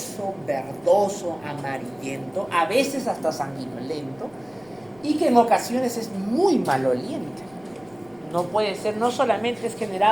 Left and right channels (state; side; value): noise; left; rumble, 28 dB below the sound